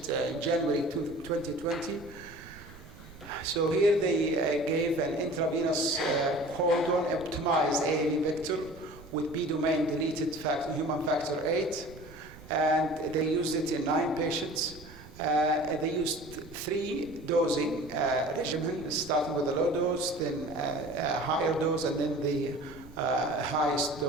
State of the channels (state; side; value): noise; right; rumble, 18 dB below the sound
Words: in January 2020. So here they gave an intravenous codon optimized AAV vector with B domain deleted human factor 8, and they used it in 9 patients. They used 3 dosing regimen, starting with a low dose, then a higher dose, and then the highest